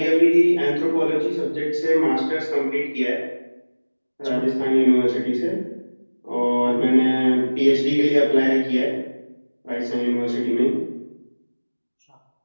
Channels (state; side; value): inverted; both; correlation -1.00